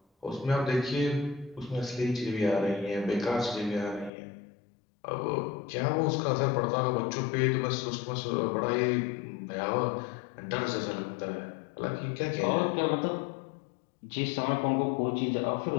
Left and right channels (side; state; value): right; drops out; at 4.1 s